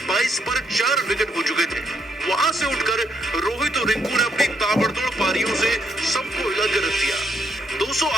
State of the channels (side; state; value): both; normal; correlation 0.74